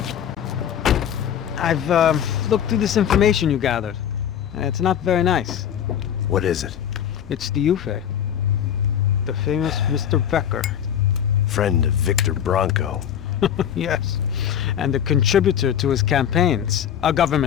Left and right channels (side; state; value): right; quieter; 9.5 dB